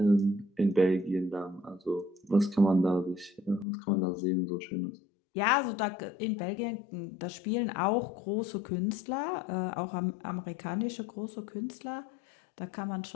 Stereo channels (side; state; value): right; drops out; at 3.7 s